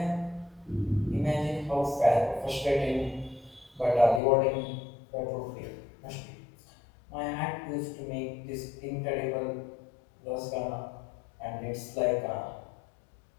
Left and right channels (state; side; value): drops out; right; at 4.2 s